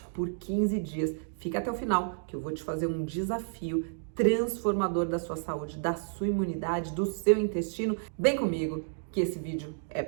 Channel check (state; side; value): silent; left; digital silence